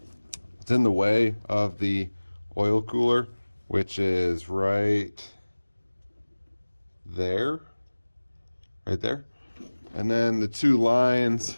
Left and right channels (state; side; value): inverted; both; correlation -1.00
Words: it's in the way of the oil cooler, which is right there. And then the two lines